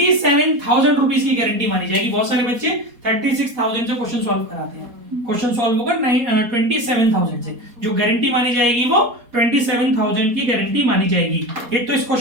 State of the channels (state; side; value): late; left; 4.2 ms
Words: रुपीज की गारंटी मानी जाएगी। बहुत सारे बच्चे 36,000 से क्वेश्चन सॉल्व कराते हैं, क्वेश्चन सॉल्व होगा 27,000 से। जो गारंटी मानी जाएगी वो 27,000 की गारंटी मानी जाएगी। एक तो इस